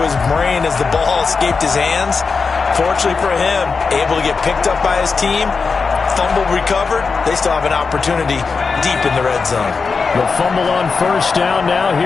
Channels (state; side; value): quieter; right; 4.9 dB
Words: his brain as the ball escaped his hands. Fortunately for him, able to get picked up by his team, fumble recovered. They still have an opportunity deep in the red zone. The fumble on first down. Now